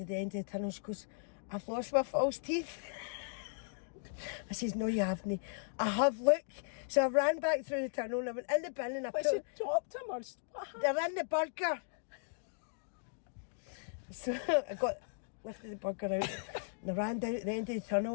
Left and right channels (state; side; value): silent; right; digital silence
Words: the end of the tunnel. She goes, I've lost my false teeth. I says, no, you haven't. I have, look. So I ran back through the tunnel and I went in the bin and I she dropped him, or what happened? They're in the burger. So I lifted the burger out and I ran down at the end of the